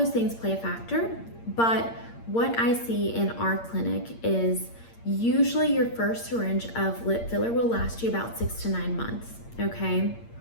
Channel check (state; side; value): late; right; 8.7 ms